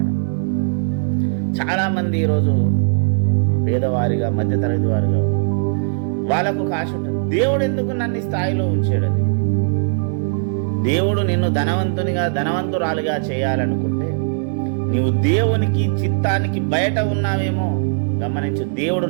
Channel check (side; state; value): left; silent; digital silence